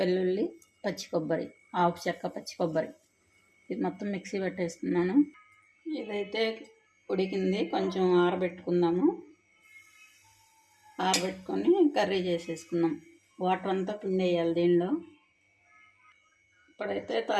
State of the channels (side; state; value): both; identical; correlation 1.00